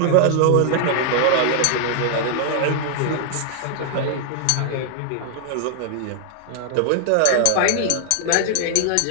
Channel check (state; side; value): different; both; correlation 0.00